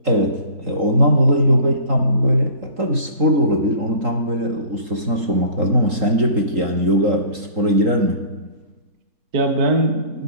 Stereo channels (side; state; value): left; late; 3.8 ms